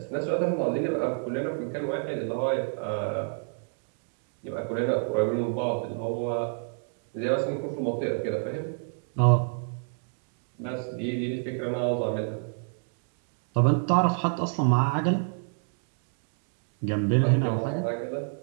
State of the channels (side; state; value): left; silent; 55 dB below the other